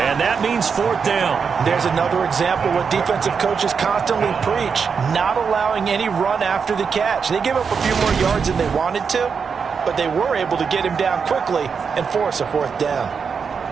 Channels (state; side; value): quieter; left; 6.0 dB